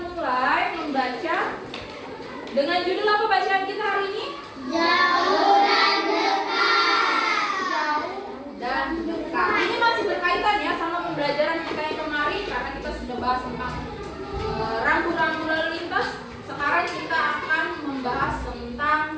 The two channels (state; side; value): identical; both; correlation 1.00